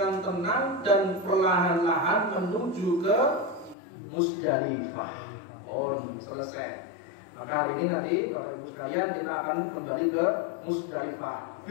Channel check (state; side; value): drops out; right; at 3.8 s